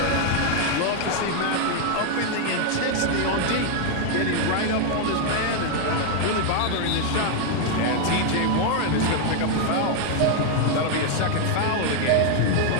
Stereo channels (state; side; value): different; both; correlation 0.00